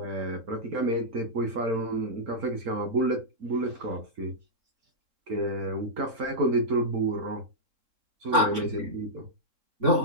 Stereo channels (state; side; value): late; left; 3.5 ms